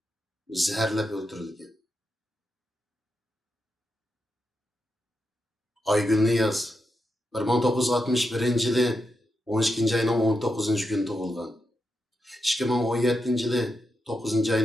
zaharlab o'ldirilgan. Aygul Niyoz 1961 yili 12 ayning 19 kuni tug'ilgan. 2017 yili 9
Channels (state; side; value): normal; both; correlation 0.86